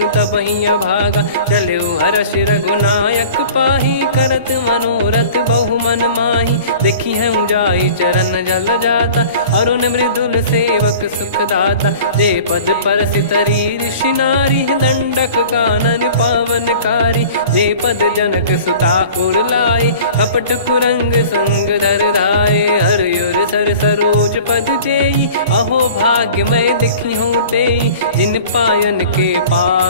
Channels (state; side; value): inverted; both; correlation -0.43